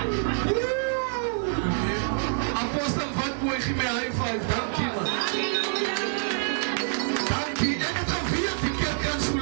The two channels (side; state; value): left; silent; digital silence